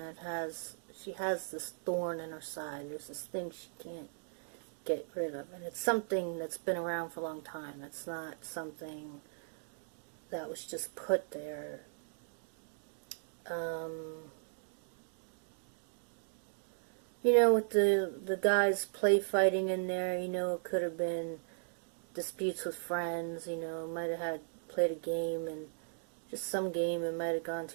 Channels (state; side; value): silent; left; digital silence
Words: she has this thorn in her side. There's this thing she can't get rid of. And it's something that's been around for a long time. It's not something that was just put there. You know, with the guys play fighting in there, you know, it could have been disputes with friends, you know, might have played a game, and just some game, it might have gone